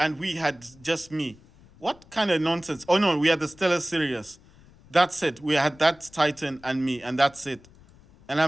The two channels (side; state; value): left; noise; rumble, 26 dB below the sound